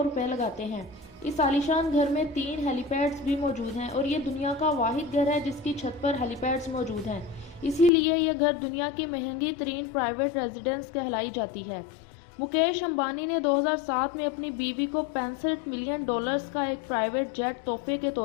रुपए लगाते हैं। इस आलीशान घर में 3 हेलीपैड्स भी मौजूद हैं और ये दुनिया का वाहिद घर है जिसकी छत पर हेलीपैड्स मौजूद हैं। इसीलिए यह घर दुनिया की महंगी तरीन प्राइवेट रेजिडेंस कहलाई जाती है। मुकेश अंबानी ने 2007 में अपनी बीवी को 65 मिलियन डॉलर्स का एक प्राइवेट जेट तोहफे के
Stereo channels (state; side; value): drops out; right; at 7.9 s